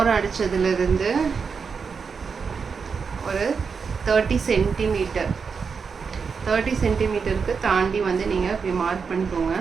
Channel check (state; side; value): quieter; left; 5.6 dB